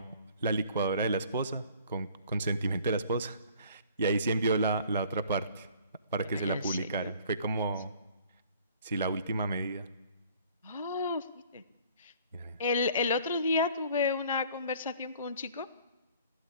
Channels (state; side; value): inverted; both; correlation -0.54